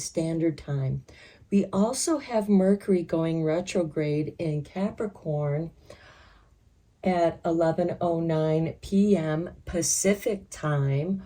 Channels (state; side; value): identical; both; correlation 1.00